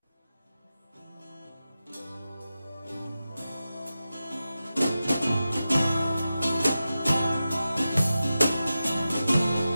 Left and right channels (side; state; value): both; inverted; correlation -0.92